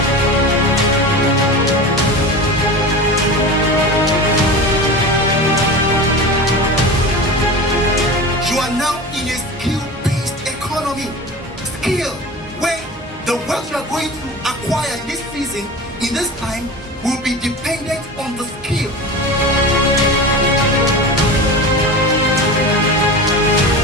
You are now in a skill-based economy. Skill, where the wealth you are going to acquire this season, in this time, will be dependent on the skill.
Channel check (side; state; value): both; normal; correlation 0.31